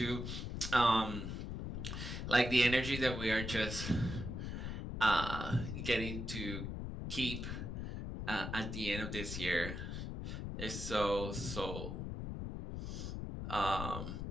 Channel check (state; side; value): noise; left; rumble, 5 dB below the sound